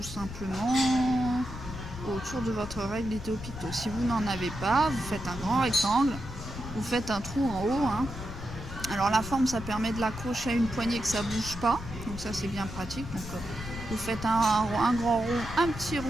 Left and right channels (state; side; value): noise; left; rumble, 10 dB below the sound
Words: simplement autour de votre règle Idéo Picto. Si vous n'en avez pas, vous faites un grand rectangle, vous faites un trou en haut. Alors la forme, ça permet de l'accrocher à une poignée que ça ne bouge pas. Donc ça, c'est bien pratique. Donc vous faites un grand rond, un petit